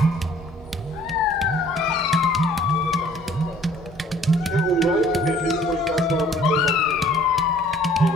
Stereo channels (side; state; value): both; normal; correlation 0.55